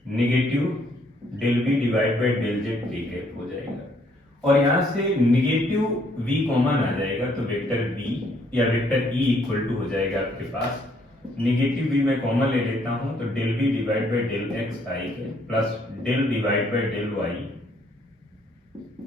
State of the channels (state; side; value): normal; both; correlation 0.67